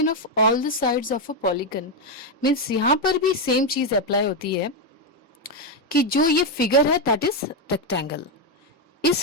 of all the sides of a polygon means यहाँ पर भी सेम चीज अप्लाई होती है कि जो ये फिगर है दैट इज रेक्टेंगल।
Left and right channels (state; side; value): normal; both; correlation 0.05